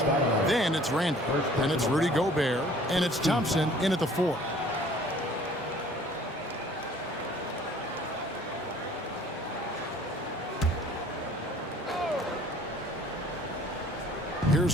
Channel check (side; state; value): both; normal; correlation 0.52